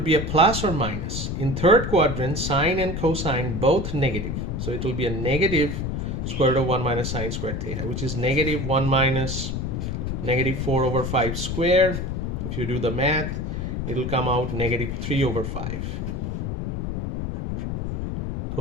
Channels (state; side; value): noise; left; rumble, 3 dB below the sound